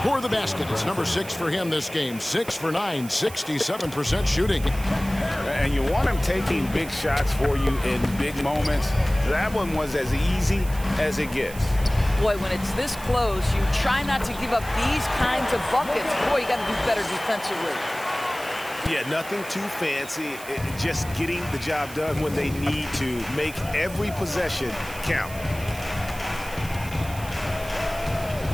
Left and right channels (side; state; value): right; noise; hiss, 15 dB below the sound